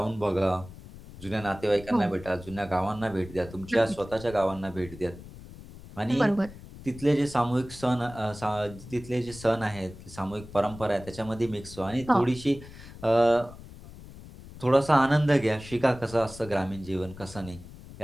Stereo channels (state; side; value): noise; left; rumble, 16 dB below the sound